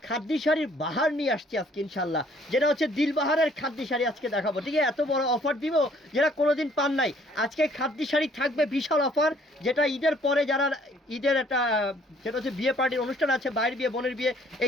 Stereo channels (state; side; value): normal; both; correlation 0.60